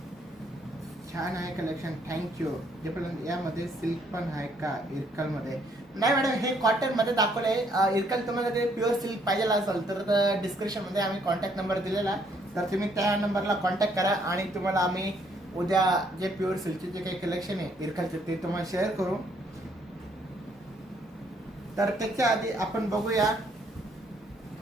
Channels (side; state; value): both; normal; correlation 0.68